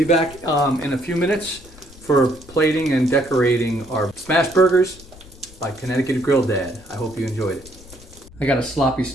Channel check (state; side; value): noise; left; rumble, 21 dB below the sound